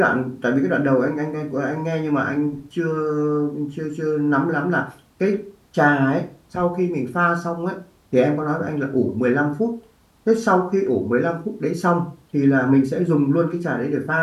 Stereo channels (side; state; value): both; identical; correlation 1.00